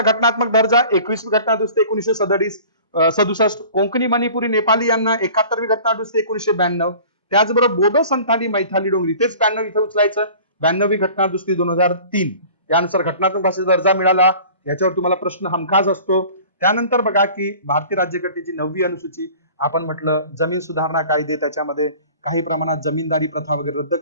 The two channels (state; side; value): inverted; both; correlation -0.45